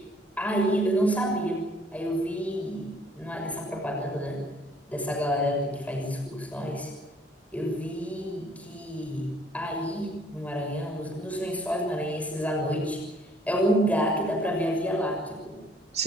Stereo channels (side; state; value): both; normal; correlation 0.59